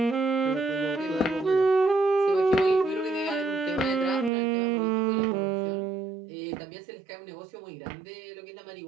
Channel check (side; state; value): left; drops out; at 4.3 s